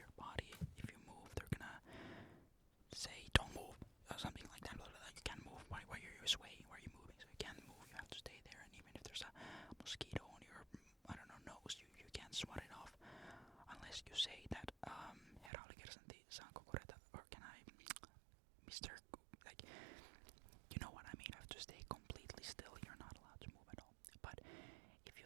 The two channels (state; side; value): drops out; left; at 15.5 s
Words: body. If you move, they're gonna say don't move or something like that. You can't move. Why are you swaying? Why are you moving? So you can't move. You have to stay there. And even if there's a mosquito on your nose, you can't swat it off unless you say that herra oli kersantti, saanko korjata, or can I, Mr. Like, you know what I mean. You have to stay completely still. You're not allowed to move at all. But if you